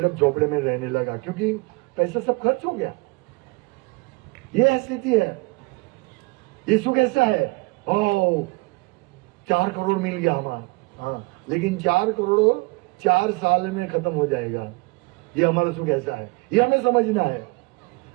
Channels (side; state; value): left; quieter; 26.9 dB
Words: अब झोपड़े में रहने लगा क्योंकि पैसा सब खर्च हो गया। ये स्थिति है। ये सुख ऐसा है, 4 करोड़ मिल गया हमारा, हाँ, लेकिन 4 करोड़ 4 साल में खत्म हो जाएगा। ये हमारा सुख ऐसा है, ये हमें समझना है।